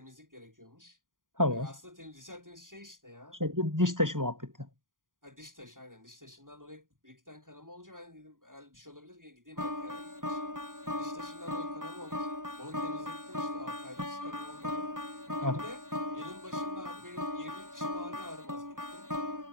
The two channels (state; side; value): late; left; 0.89 ms